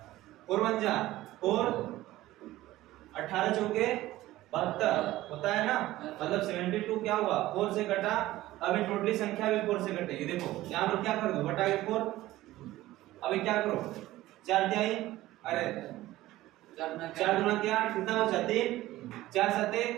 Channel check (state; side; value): quieter; left; 16.3 dB